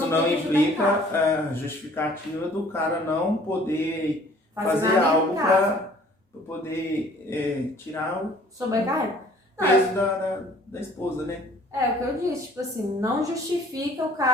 eu não tenho que ajudar em implica casa. a justificativa do cara não poder fazer nada em algo casa. para poder tirar o Sobrecarrega. Não, peso da esposa, né? É o que eu disse, tipo assim, não justifica o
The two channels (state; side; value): normal; both; correlation 0.54